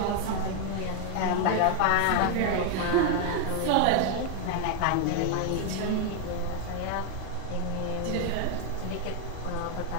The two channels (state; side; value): different; both; correlation 0.00